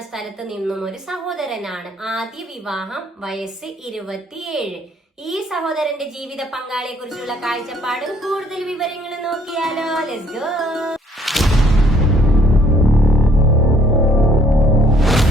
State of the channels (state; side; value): normal; both; correlation 0.63